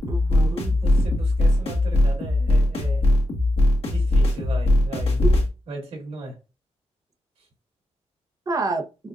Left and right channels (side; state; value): both; normal; correlation 0.88